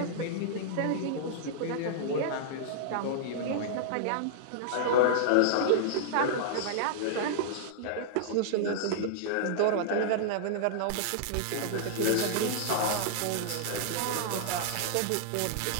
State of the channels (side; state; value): both; different; correlation -0.02